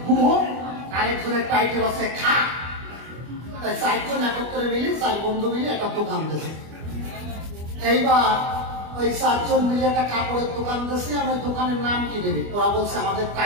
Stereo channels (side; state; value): left; late; 25 ms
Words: গুহ, আর একজনের টাইটেল হচ্ছে খা। তাই 4 জন একত্রে মিলে, 4 বন্ধু মিলে একটা দোকান দিয়েছে। এইবার ওই 4 জন মিলে একটা কাপড়ের দোকান দিয়েছে। আর ওই দোকানের নাম কি দেবে? ওরা বলছে আমাদের